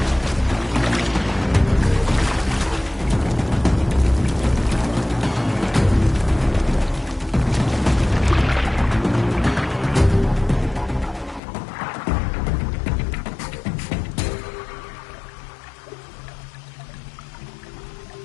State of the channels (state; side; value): drops out; right; at 11.4 s